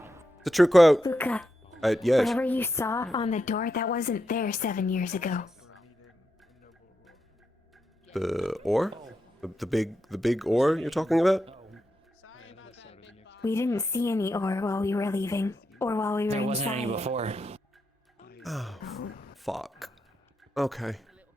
It's a true quote. Luca, Yes. Whatever you saw on the door, that wasn't there 7 years ago. The ore? The big ore you're talking about? We didn't see any ore while we were leaving, or while we were There wasn't any inside. before. Oh, fuck. Okay.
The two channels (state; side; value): normal; both; correlation 0.85